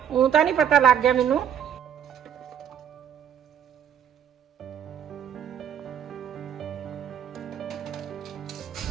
ਉਹ ਤਾਂ ਨਹੀਂ ਪਤਾ ਲੱਗ ਗਿਆ ਮੈਨੂੰ।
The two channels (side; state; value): left; quieter; 9.1 dB